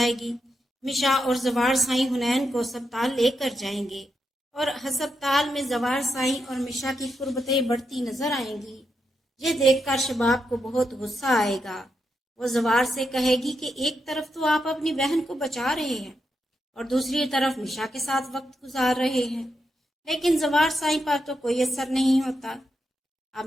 मिशा और जवार साईं हुनैन को अस्पताल लेकर जाएंगे और अस्पताल में जवार साईं और मिशा की कुर्बतें बढ़ती नजर आएंगी। ये देखकर शबाब को बहुत गुस्सा आएगा। वो जवार से कहेगी कि एक तरफ तो आप अपनी बहन को बचा रहे हैं और दूसरी तरफ मिशा के साथ वक्त गुजार रहे हैं, लेकिन जवार साईं पर तो कोई असर नहीं होता। अब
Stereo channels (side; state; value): both; normal; correlation 0.84